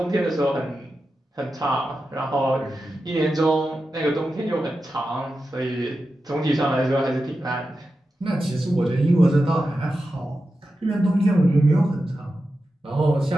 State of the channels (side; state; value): both; normal; correlation 0.91